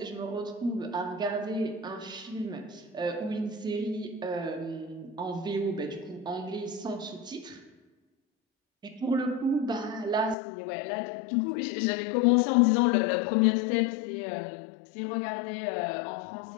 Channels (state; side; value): drops out; right; at 10.4 s